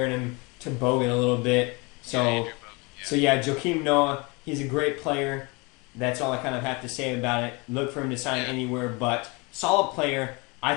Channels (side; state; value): right; quieter; 27.9 dB